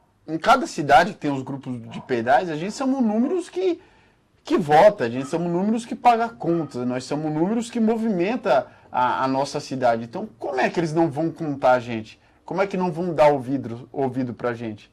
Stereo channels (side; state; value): both; identical; correlation 1.00